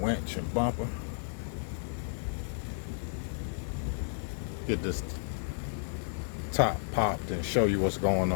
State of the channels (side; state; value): right; silent; digital silence